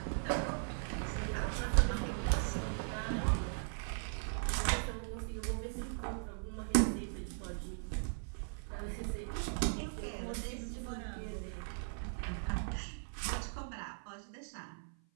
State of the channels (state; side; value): silent; left; 52 dB below the other